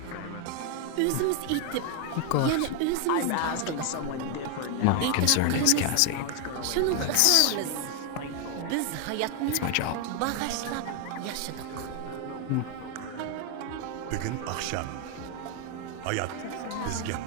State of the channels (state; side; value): different; both; correlation 0.01